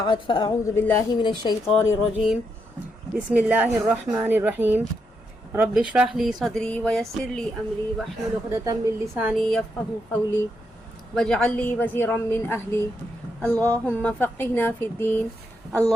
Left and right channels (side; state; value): both; normal; correlation 0.80